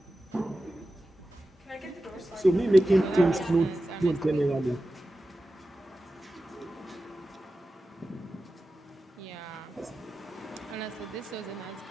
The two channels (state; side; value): normal; both; correlation 0.93